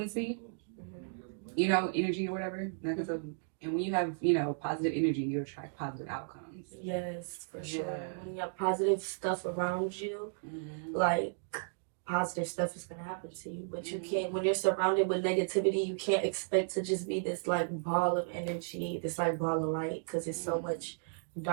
energy or whatever. And when you have, positive energy, you attract positive outcomes. Yes, for sure. When you have positive stuff around you, like positive stuff is gonna happen to you. But you can't, when you're surrounded with negativity, you can't expect to just be this like ball of energy, this like ball of light, because there's so much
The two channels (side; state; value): left; silent; digital silence